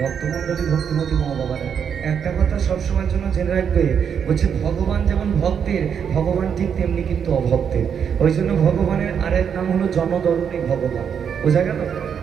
ভক্তমণ্ডলী ভক্তিমতী মা বাবারা একটা কথা সবসময়ের জন্য জেনে রাখবে, বলছে ভগবান যেমন ভক্তের, ভগবান ঠিক তেমনি কিন্তু অভক্তের। ওই জন্য ভগবানের আরেক নাম হলো জনদরণী ভগবান। বোঝা গেল?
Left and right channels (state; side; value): quieter; left; 7.6 dB